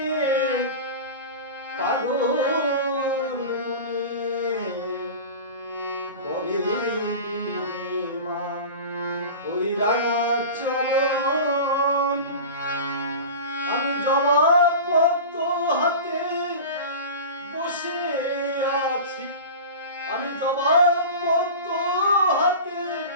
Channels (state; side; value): inverted; both; correlation -0.32